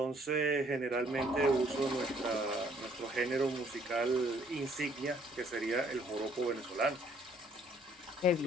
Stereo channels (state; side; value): normal; both; correlation 0.63